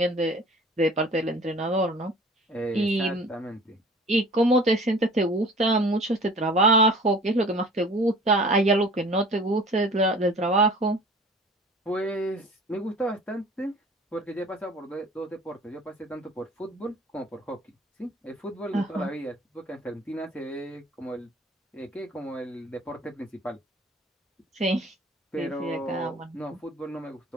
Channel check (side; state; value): both; normal; correlation 0.46